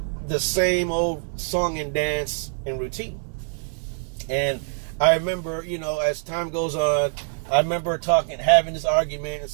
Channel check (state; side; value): silent; left; digital silence